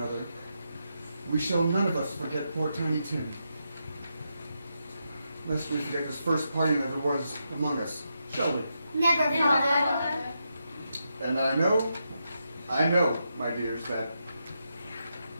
we shall none of us forget poor Tiny Tim. Lest we forget this first parting that there was among us, shall we? Never, Father. And I know, my dears, that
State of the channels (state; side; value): inverted; both; correlation -0.84